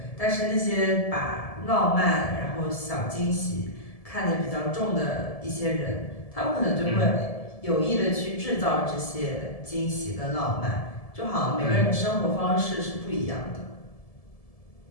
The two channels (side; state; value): right; late; 1.7 ms